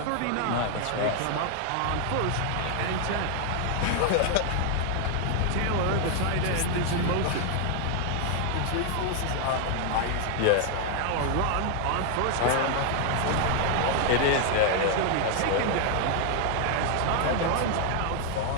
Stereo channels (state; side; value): different; both; correlation 0.00